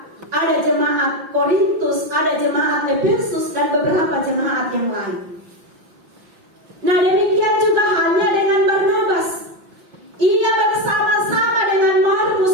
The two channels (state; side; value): late; left; 5.7 ms